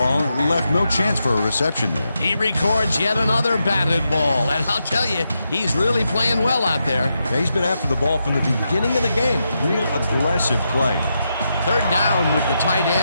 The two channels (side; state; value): both; inverted; correlation -0.85